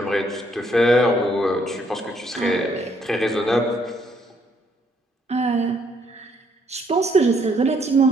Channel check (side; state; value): both; normal; correlation 0.69